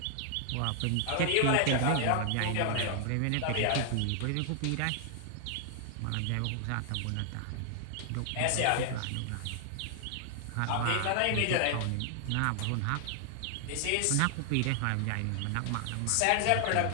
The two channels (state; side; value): different; both; correlation 0.00